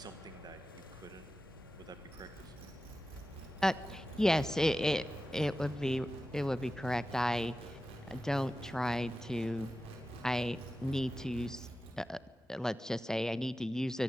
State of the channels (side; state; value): both; normal; correlation 0.93